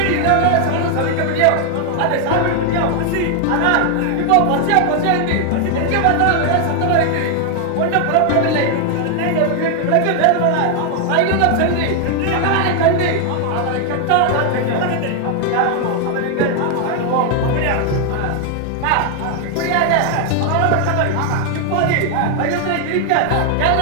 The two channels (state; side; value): different; both; correlation 0.00